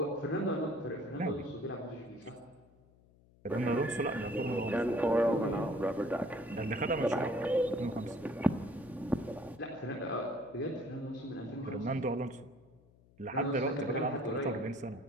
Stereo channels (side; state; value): left; noise; hum, 28 dB below the sound